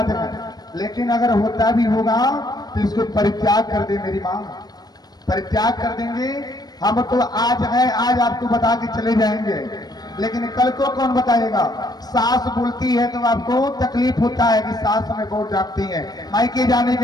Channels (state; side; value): late; right; 0.19 ms